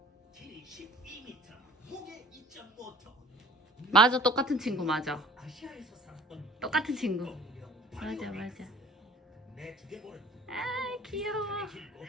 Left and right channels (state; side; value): normal; both; correlation 0.48